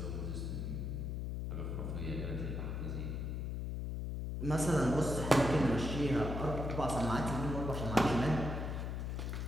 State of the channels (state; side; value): noise; left; hum, 3 dB below the sound